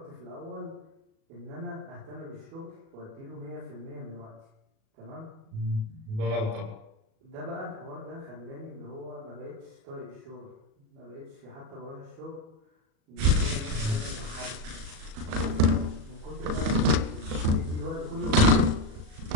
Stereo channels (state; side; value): late; left; 37 ms